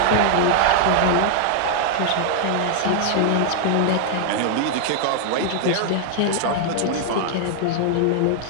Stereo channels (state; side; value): different; both; correlation -0.01